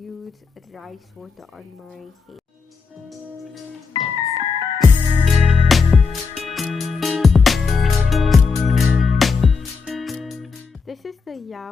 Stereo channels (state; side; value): quieter; right; 5.0 dB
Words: rice water on my hair. This is the